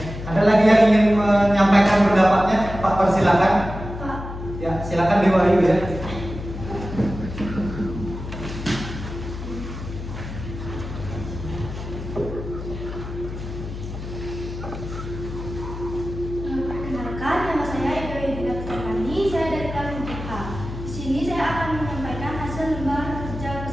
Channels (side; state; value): left; noise; hum, 9 dB below the sound